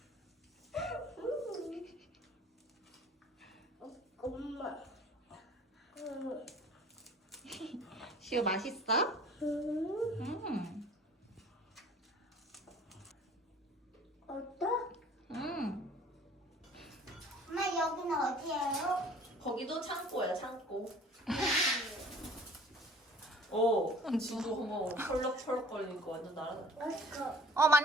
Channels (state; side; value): normal; both; correlation 0.49